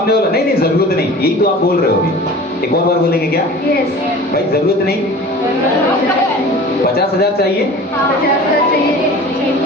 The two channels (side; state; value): both; normal; correlation 0.40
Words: वाला नहीं नहीं जरूरत नहीं। यही तो आप बोल रहे हो अभी। एक और बार बोलेंगे क्या? भाई जरूरत नहीं, 50,000 चाहिए। 50,000 चाहिए।